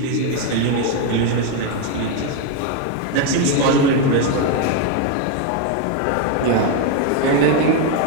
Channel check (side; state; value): both; different; correlation 0.02